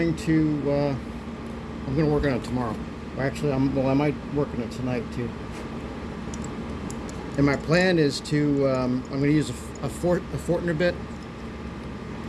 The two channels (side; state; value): both; identical; correlation 1.00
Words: to work on it tomorrow. Or actually, I might work on it tonight too. And my plan is to I'm going to use a Fortner bit.